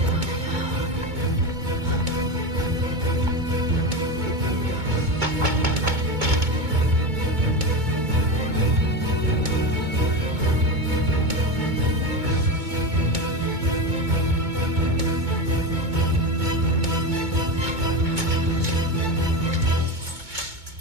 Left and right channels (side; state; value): left; late; 2.2 ms